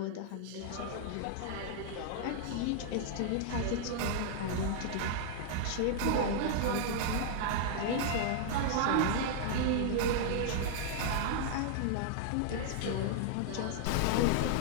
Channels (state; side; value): different; both; correlation -0.01